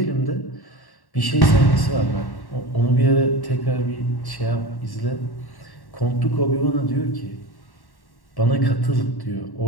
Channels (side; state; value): right; late; 1.1 ms